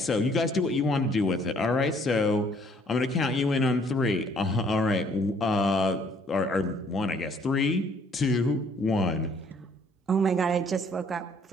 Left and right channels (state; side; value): normal; both; correlation 0.62